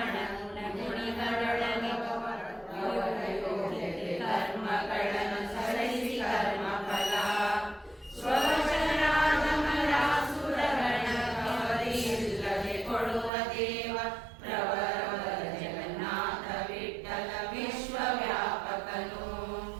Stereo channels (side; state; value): left; drops out; at 13.3 s